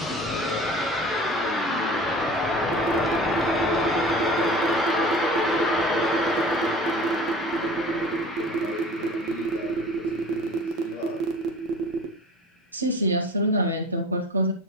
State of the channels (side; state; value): both; normal; correlation 0.41